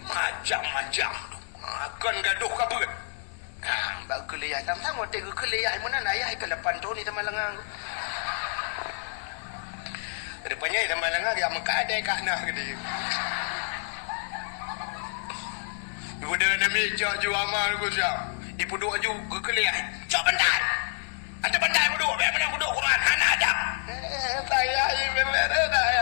macam-macam akan gaduh kabut Pak kalian tang-tang mau tengok kalian mana ayah ke lepan tu ni teman lengang depannya teman lengang dia mengkadai kat nah dia ibu dah namanya jauh amal ku siap ibu doa juga kalian coba bentar ada bandai bodoh, biar mana bodoh Quran, anak ada. Saya ini benar-benar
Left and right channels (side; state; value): right; silent; digital silence